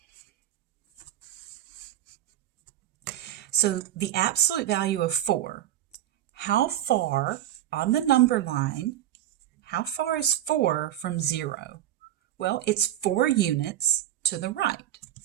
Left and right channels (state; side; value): quieter; left; 12.6 dB